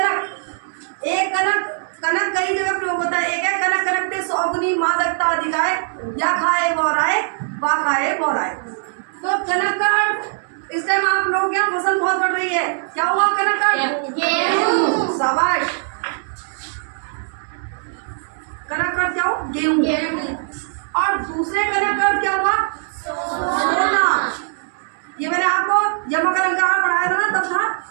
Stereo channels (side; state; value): left; silent; 65 dB below the other